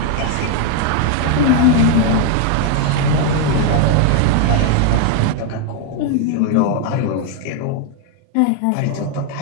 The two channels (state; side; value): different; both; correlation 0.00